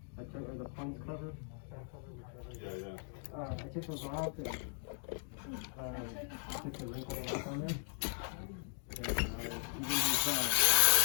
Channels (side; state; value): right; silent; 53 dB below the other